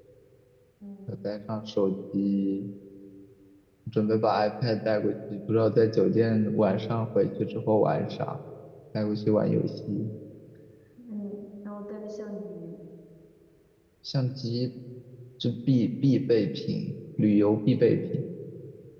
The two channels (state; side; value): identical; both; correlation 1.00